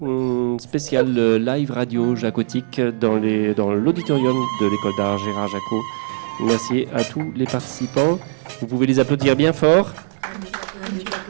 spéciale live radio jacotique dans l'auditorium de l'école d'art Gérard Jacot. Merci à tous les participants. Vous pouvez les applaudir bien fort.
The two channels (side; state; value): left; silent; digital silence